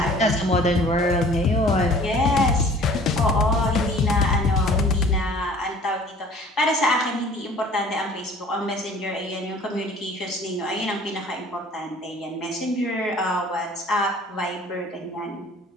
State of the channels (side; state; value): both; normal; correlation 0.50